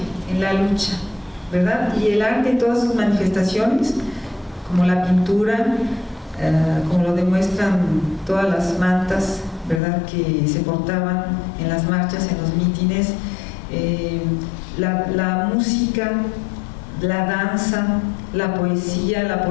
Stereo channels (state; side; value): drops out; right; at 9.8 s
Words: en la lucha, ¿verdad? Y el arte en todas sus manifestaciones, como la pintura, como lo demuestran todas las mantas, ¿verdad?, que se portaban en las marchas, en los mítines, la música, la danza, la